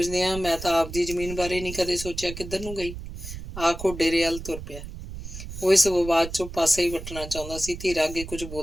ਆ, ਮੈਂ ਤਾਂ ਆਪਦੀ ਜ਼ਮੀਨ ਬਾਰੇ ਨਹੀਂ ਕਦੇ ਸੋਚਿਆ ਕਿੱਧਰ ਨੂੰ ਗਈ। ਆਖੋ ਡੇਰੇ ਵੱਲ ਤੁਰ ਪਿਆ। ਉਹ ਇਸ ਵਿਵਾਦ 'ਚੋਂ ਪਾਸੇ ਹੀ ਵੱਟਣਾ ਚਾਹੁੰਦਾ ਸੀ। ਧੀਰਾ ਅੱਗੇ ਕੁਝ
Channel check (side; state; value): right; noise; rumble, 10 dB below the sound